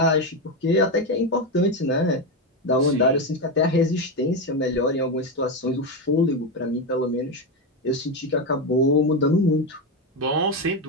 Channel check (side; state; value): both; normal; correlation 0.11